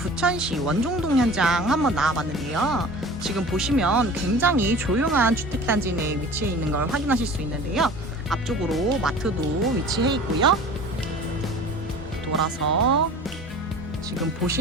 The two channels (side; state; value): both; normal; correlation 0.41